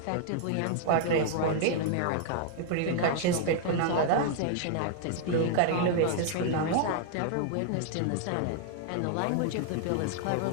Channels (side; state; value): both; different; correlation 0.00